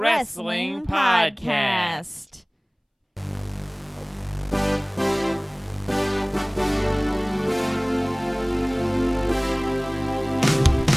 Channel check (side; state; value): both; identical; correlation 1.00